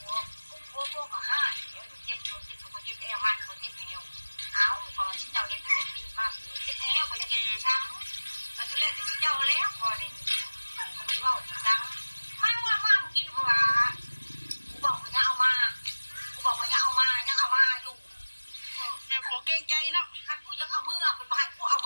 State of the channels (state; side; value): inverted; both; correlation -1.00